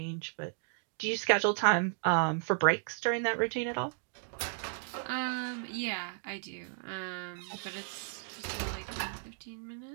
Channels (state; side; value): silent; left; 55 dB below the other